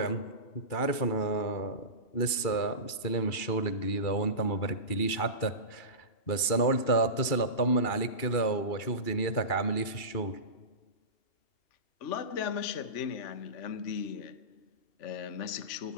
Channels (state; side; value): late; right; 2.4 ms